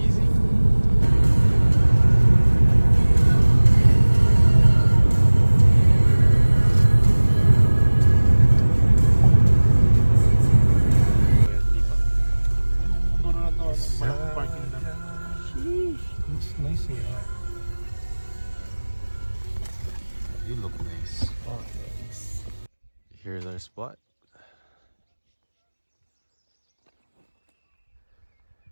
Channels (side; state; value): both; inverted; correlation -1.00